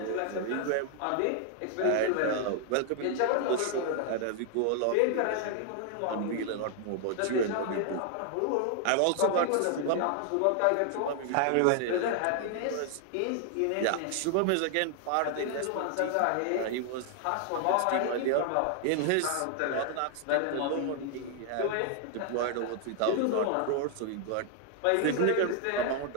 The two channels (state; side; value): different; both; correlation 0.00